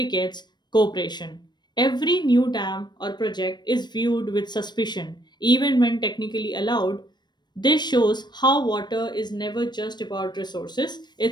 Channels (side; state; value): right; late; 0.21 ms